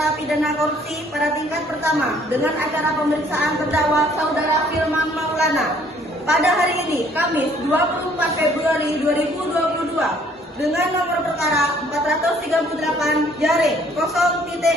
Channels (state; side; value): normal; both; correlation 0.60